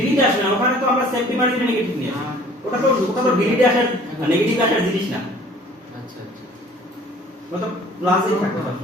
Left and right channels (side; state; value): both; normal; correlation 0.52